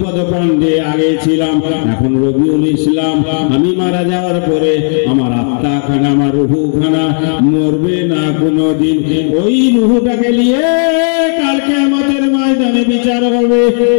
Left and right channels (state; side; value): silent; right; 63 dB below the other